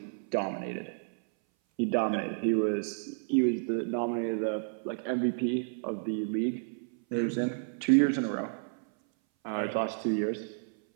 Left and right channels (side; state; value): left; silent; 57 dB below the other